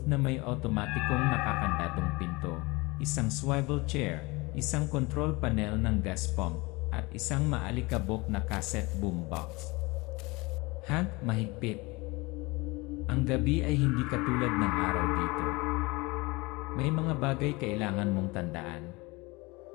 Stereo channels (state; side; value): quieter; right; 24.4 dB